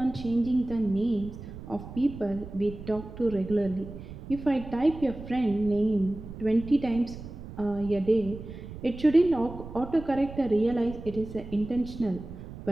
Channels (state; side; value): noise; right; rumble, 12 dB below the sound